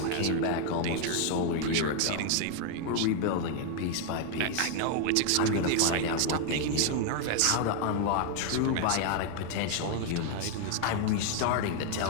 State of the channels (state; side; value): different; both; correlation 0.00